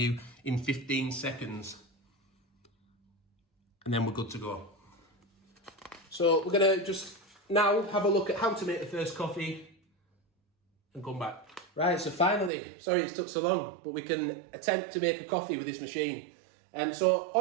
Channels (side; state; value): left; drops out; at 12.5 s